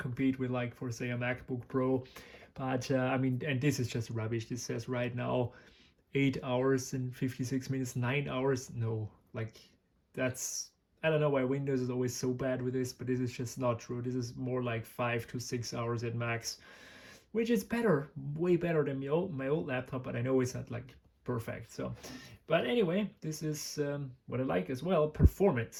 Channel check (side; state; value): both; identical; correlation 1.00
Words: with, like, for say a MacBook Pro. But I mean, and this is just rubbish. This says right now 8 hours and 56 minutes, 9 hours. No, like, that's, I don't know why Windows is always so bad with this, but this is just not true. This is more like 5 to 6 hours at max, which is better, way better than my old laptop, but I know it's not like perfect. So, but anyway, this is what I like as well,